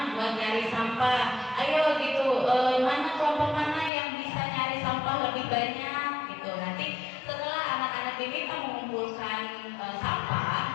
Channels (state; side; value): drops out; right; at 3.9 s